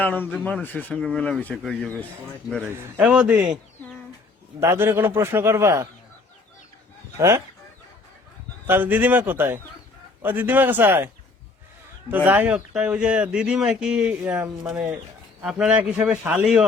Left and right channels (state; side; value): quieter; right; 3.8 dB